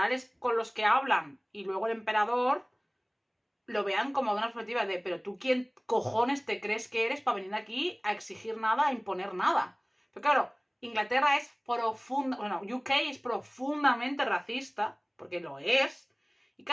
con los que hablan y luego el emperador lo vean como de una perspectiva de, pero tú quién cojones te crees que eres para venir aquí a exigir nada, a imponer nada. Pero claro, Inglaterra es UK es profundamente racista, porque lo es, y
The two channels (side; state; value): both; identical; correlation 1.00